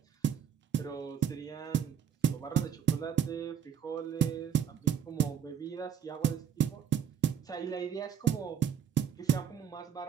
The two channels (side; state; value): left; quieter; 8.6 dB